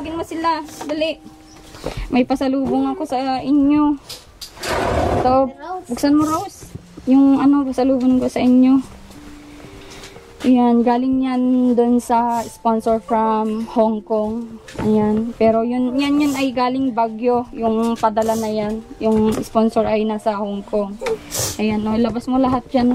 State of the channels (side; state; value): both; identical; correlation 1.00